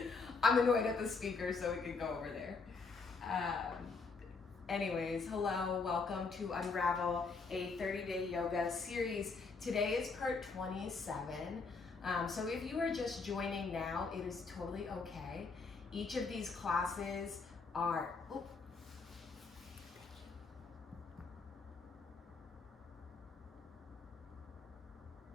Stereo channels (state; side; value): quieter; right; 4.4 dB